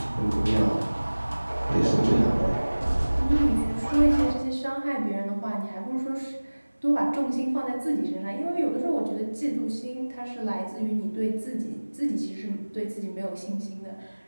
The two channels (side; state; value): both; inverted; correlation -1.00